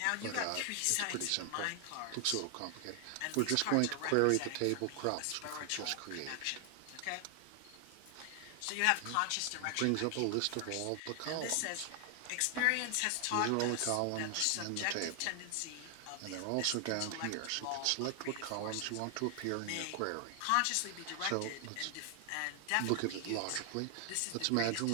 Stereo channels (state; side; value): different; both; correlation 0.00